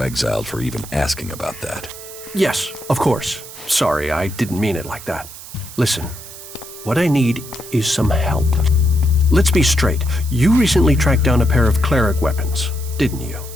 exiled for even asking about that. Yes, of course. Sorry, I didn't mean it like that. Listen, what I need is some help. Let's be straight. You recently tracked down a pair of cleric weapons, didn't you?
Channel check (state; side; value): noise; right; hiss, 14 dB below the sound